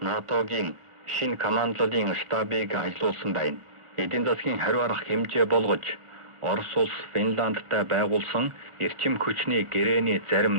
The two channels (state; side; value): late; left; 1.4 ms